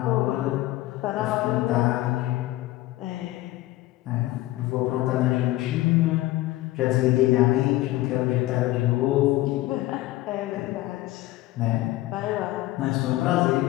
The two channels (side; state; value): right; quieter; 17.1 dB